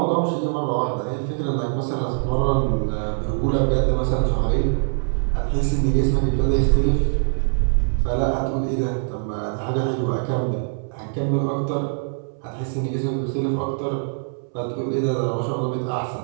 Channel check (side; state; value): left; silent; 64 dB below the other